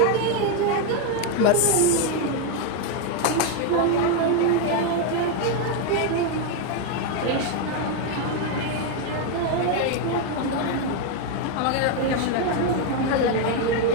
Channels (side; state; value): both; different; correlation 0.01